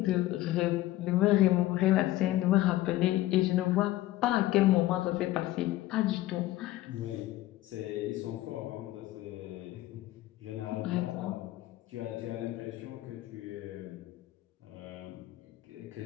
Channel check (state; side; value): quieter; right; 16.1 dB